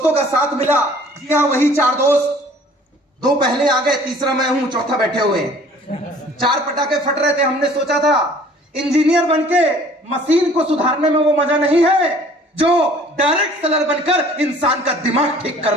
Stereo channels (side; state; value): both; normal; correlation 0.52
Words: का साथ मिला। जी हाँ, वही 4 दोस्त, 2 पहले आ गए, तीसरा मैं हूं, चौथा बैठे हुए हैं। 4 पटाखे फट रहे थे। हमने सोचा था इंजीनियर बनके मशीन को सुधारने में वो मजा नहीं है जो डायरेक्ट सेलर बनकर इंसान का दिमाग ठीक